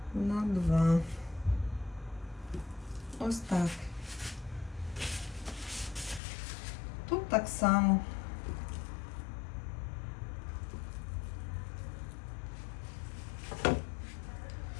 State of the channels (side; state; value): right; drops out; at 6.2 s